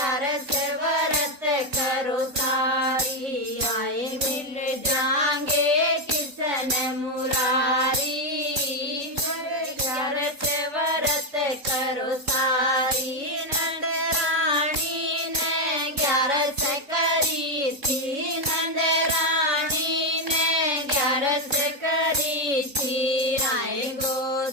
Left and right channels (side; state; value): left; late; 3.6 ms